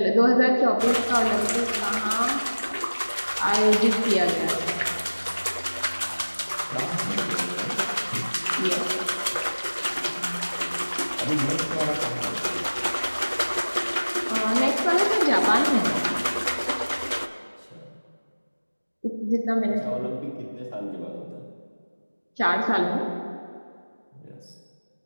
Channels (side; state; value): both; inverted; correlation -1.00